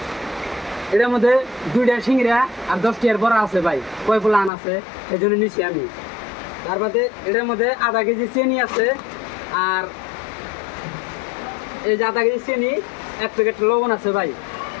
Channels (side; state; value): right; drops out; at 4.5 s